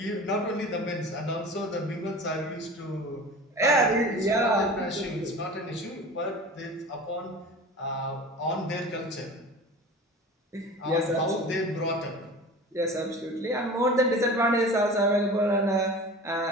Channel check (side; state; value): both; normal; correlation 0.37